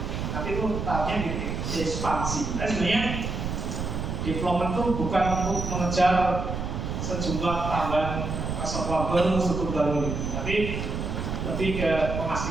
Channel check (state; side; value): noise; right; rumble, 3 dB below the sound